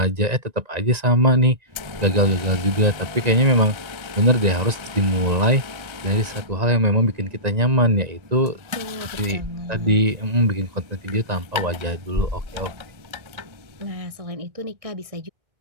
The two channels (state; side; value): late; left; 1.9 ms